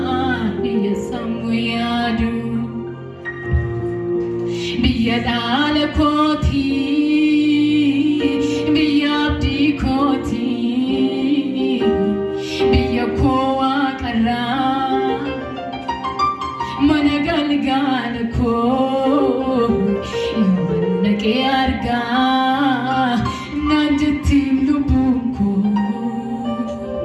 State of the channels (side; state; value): both; identical; correlation 1.00